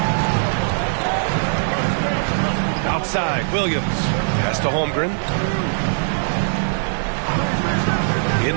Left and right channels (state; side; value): silent; left; 65 dB below the other